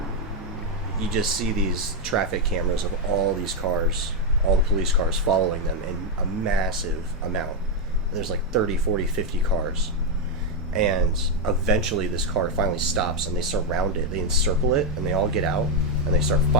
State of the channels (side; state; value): both; normal; correlation 0.01